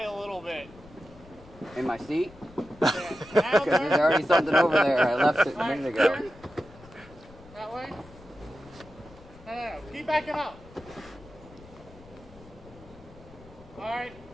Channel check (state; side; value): noise; left; rumble, 21 dB below the sound